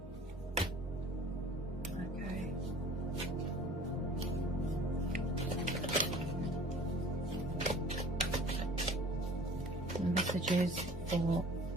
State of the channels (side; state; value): both; normal; correlation 0.47